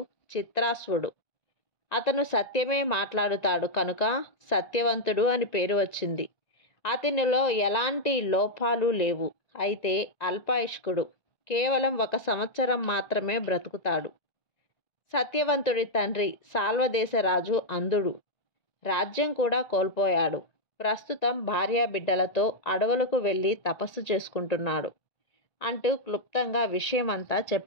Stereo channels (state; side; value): late; right; 1.9 ms